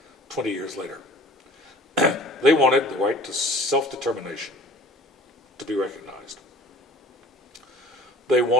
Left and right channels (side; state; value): both; normal; correlation 0.45